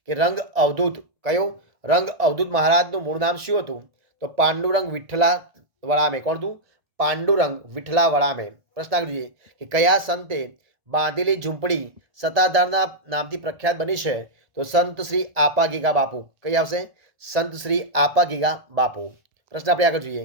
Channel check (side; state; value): left; late; 1.7 ms